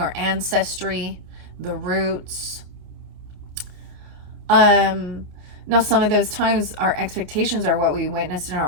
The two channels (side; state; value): left; late; 29 ms